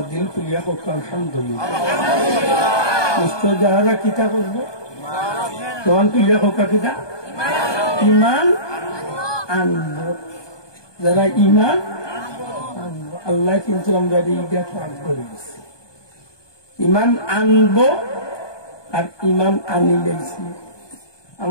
দিল খুলিয়া হোক আলহামদুলিল্লাহ নিশ্চয় যাহারা কিতা করবো তখন খুলিয়া হোক কিতা ইমান আনবো যারা ইমান আনবো আল্লাহ কিন্তু আমরা এইটা কাজ করে দিচ্ছি ইমান আনবো আর ইমান আনি গেছি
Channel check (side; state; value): right; late; 1.2 ms